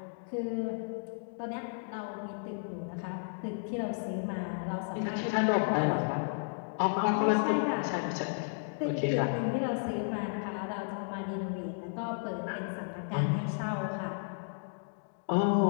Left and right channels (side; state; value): right; silent; digital silence